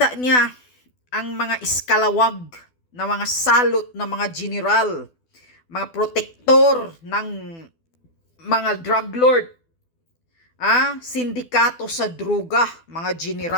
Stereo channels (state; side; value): late; right; 12 ms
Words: niya ang mga iskalawag na mga salot na mga general, mga protektor ng mga drug lord Sindikato sa droga, mga